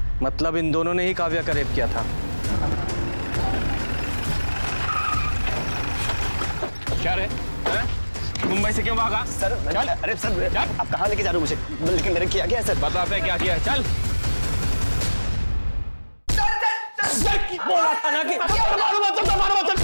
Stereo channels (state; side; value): inverted; both; correlation -1.00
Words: मतलब इन दोनों ने ही काव्या का रेप किया था। क्या रे? मुंबई से क्यों भागा? सर अरे सर आप कहाँ लेके जा रहे हो मुझे? लेकिन मैंने किया क्या है सर? बताते क्या किया है, चल। बोला था ना कि